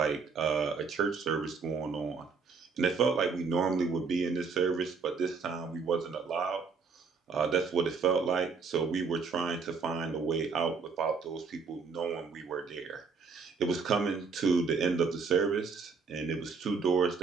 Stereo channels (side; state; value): left; quieter; 5.1 dB